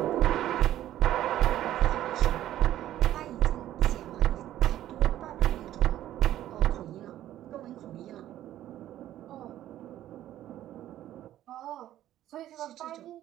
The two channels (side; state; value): left; quieter; 12.9 dB